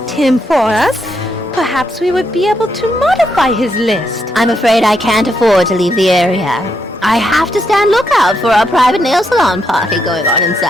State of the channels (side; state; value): both; normal; correlation 0.79